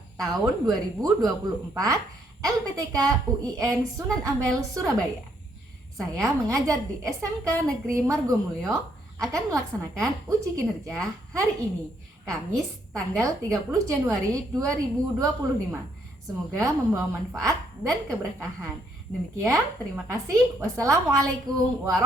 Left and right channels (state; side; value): normal; both; correlation 0.71